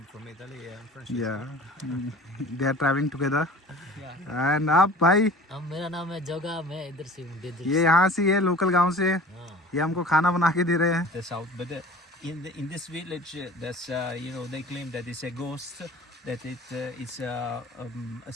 from Italy. I'm from. या they are travelling together. And आप भाई? मेरा नाम है जोगा, मैं इधर से हूँ डेजर्ट। ये यहाँ से है, लोकल गांव से। ये हमको खाना बना के दे रहे हैं। The south, but in this village, there's they claim that it's a ghost that it is a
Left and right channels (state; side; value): normal; both; correlation 0.43